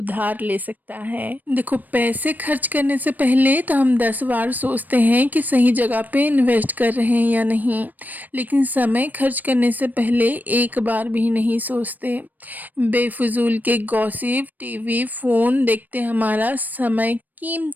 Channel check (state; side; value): late; left; 0.085 ms